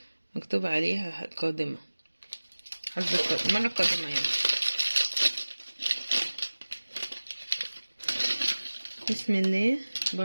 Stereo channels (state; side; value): inverted; both; correlation -1.00